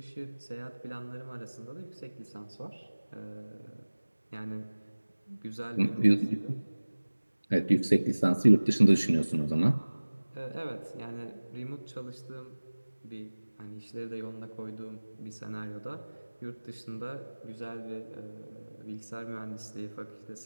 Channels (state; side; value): inverted; both; correlation -1.00